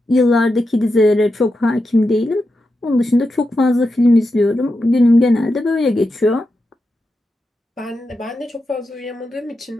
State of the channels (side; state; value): both; normal; correlation 0.88